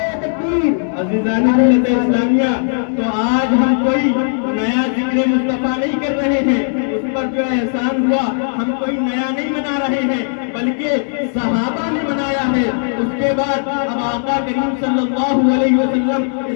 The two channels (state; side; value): silent; right; 68 dB below the other